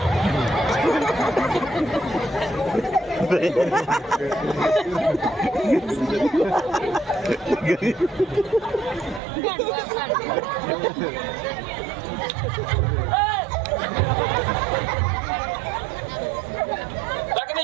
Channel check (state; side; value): drops out; left; at 9.2 s